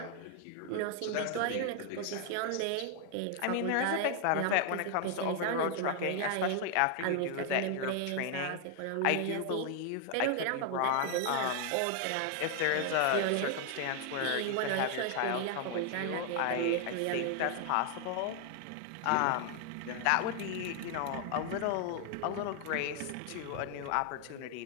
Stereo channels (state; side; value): different; both; correlation 0.00